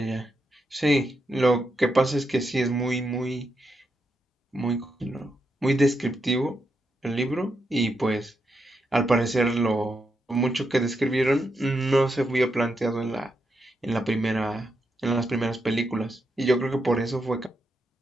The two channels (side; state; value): both; normal; correlation 0.83